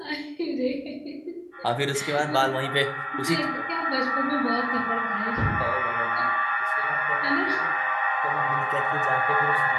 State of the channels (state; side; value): identical; both; correlation 1.00